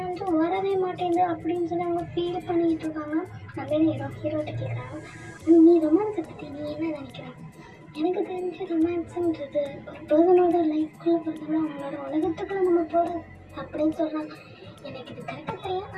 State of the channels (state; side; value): identical; both; correlation 1.00